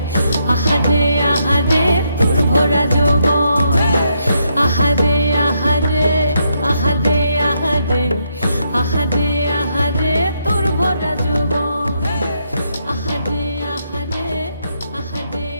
আহারে আহারে তোর ভরা যৌবন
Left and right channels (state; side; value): inverted; both; correlation -0.77